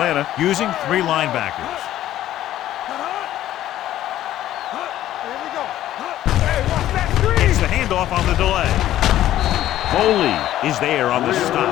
using 3 linebackers. Here we go. Hey, watch that screen. It's the handoff on the delay. Foley is there on the stop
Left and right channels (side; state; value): right; quieter; 13.1 dB